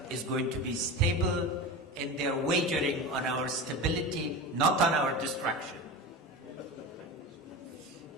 is going to be stable and they are wagering on our stability, not on our destruction.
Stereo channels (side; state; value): both; normal; correlation 0.27